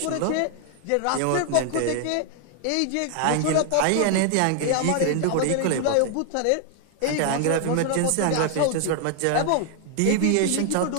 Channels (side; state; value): both; different; correlation 0.00